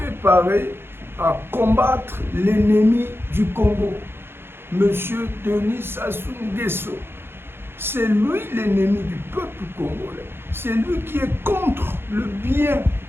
à combattre l'ennemi du Congo, Monsieur Denis Sassou Nguesso. C'est lui l'ennemi du peuple congolais. C'est lui qui est contre le bien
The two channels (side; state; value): left; late; 0.11 ms